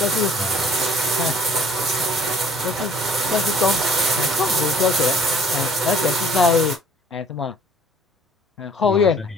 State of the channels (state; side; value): normal; both; correlation 0.55